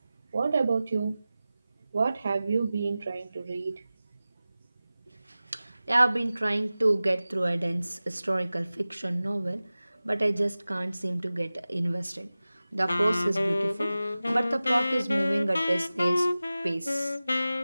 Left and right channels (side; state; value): both; inverted; correlation -0.96